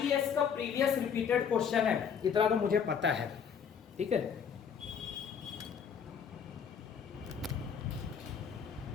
का प्रीवियस रिपीटेड क्वेश्चन है, इतना तो मुझे पता है। ठीक है,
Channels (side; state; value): right; quieter; 7.2 dB